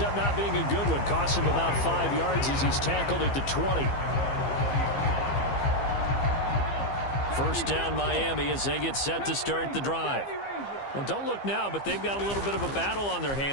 not being a good one. Costs him about 5 yards as he's tackled at the 20. 1st down Miami as they get set to start the drive. Well, don't look now, but they've got a little bit of a battle on their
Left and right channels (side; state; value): right; late; 15 ms